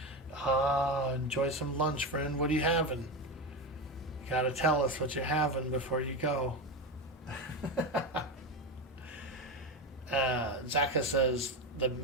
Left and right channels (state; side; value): normal; both; correlation 0.17